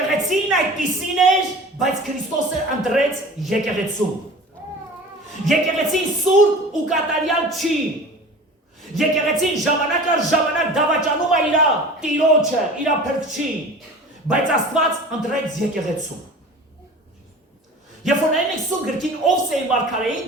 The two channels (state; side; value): normal; both; correlation 0.39